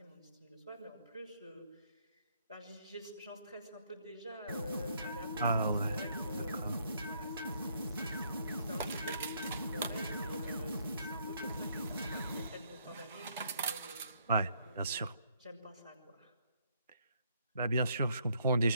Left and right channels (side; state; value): both; inverted; correlation -0.69